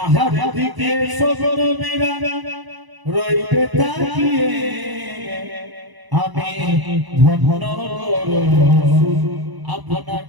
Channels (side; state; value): left; late; 1.0 ms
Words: দিকে সব নবীরা রইবে তাকিয়ে আমি ধন্য রসূল